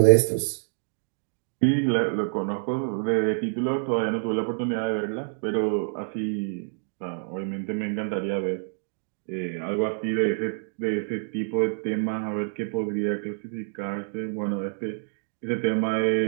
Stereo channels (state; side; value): silent; left; digital silence